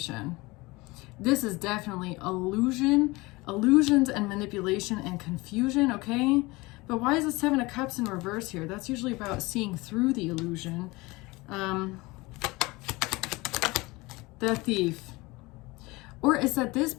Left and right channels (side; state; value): right; quieter; 22.8 dB